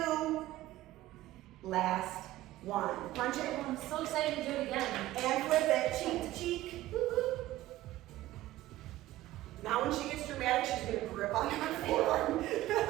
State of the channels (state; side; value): quieter; left; 15.7 dB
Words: Last 1. Punch it. I'm so excited to do it again. And flip it. Cheek to cheek. Now when she gets dramatic, she's gonna grip on her forearm.